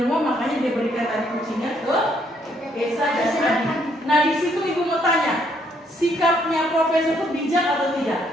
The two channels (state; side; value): normal; both; correlation 0.70